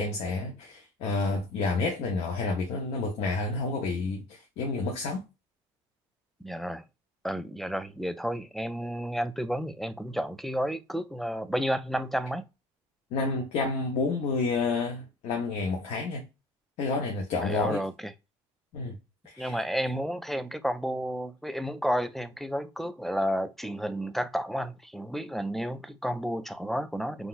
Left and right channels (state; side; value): normal; both; correlation 0.59